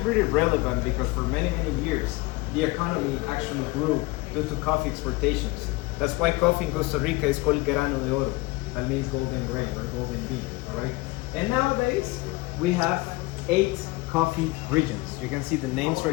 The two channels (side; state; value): right; quieter; 22.4 dB